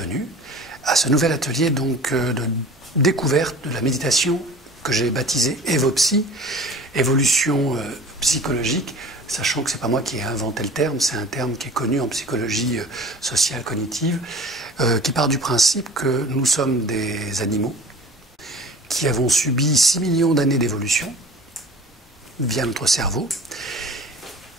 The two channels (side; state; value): both; normal; correlation 0.43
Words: à ce nouvel atelier de découverte de la méditation que j'ai baptisé Evopsy, évolution psychologique, sachant que ce n'est pas moi qui ai inventé le terme, c'est un terme qui est connu en psychologie sociale cognitive, qui part du principe que nous sommes des animaux qui avons subi 6 millions d'années d'évolution via notre cerveau